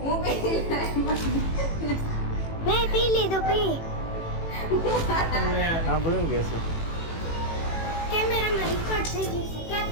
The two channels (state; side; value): late; right; 18 ms